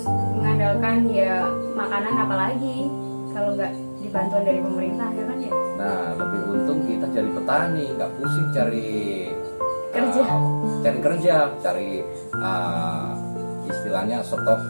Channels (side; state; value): both; inverted; correlation -1.00